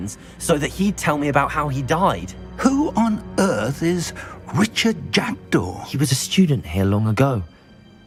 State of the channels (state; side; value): identical; both; correlation 1.00